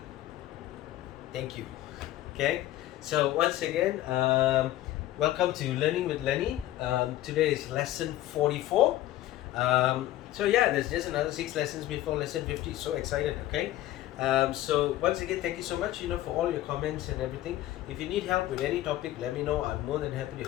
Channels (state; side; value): quieter; right; 14.5 dB